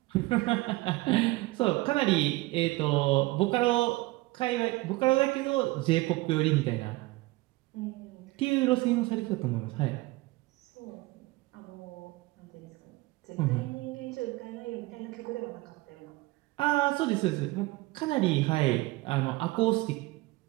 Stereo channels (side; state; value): left; quieter; 20.9 dB